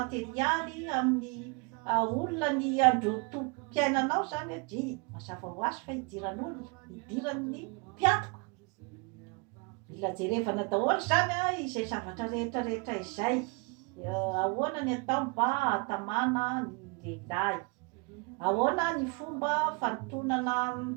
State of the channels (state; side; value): quieter; left; 31.4 dB